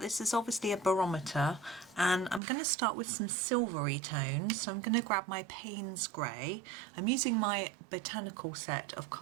this is obviously a barometer, and I'm going to start with some silvery tones. So I'm going to grab my Paynes Grey. I'm using my Botanical set of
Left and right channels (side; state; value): left; drops out; at 2.4 s